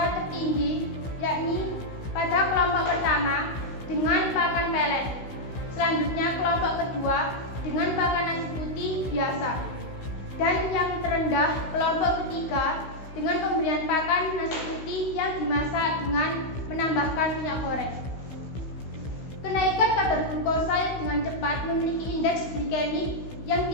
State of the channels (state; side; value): late; right; 16 ms